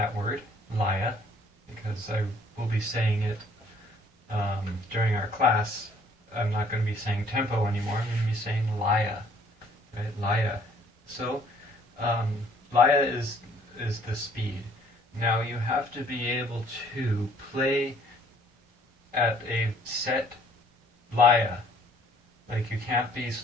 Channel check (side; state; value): both; normal; correlation 0.60